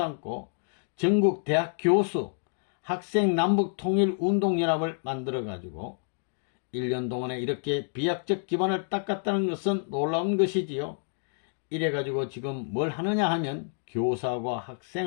전국 대학 교수 학생 남북통일운동연합을 만들어가지고 1년 동안에 이렇게 비약적 기반을 닦았다는 것은 놀라운 것이지요. 이래가지고 지금 뭘 하느냐 하면 교사하고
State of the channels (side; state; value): right; silent; digital silence